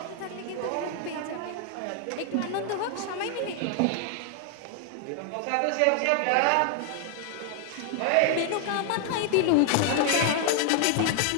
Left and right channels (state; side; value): different; both; correlation 0.00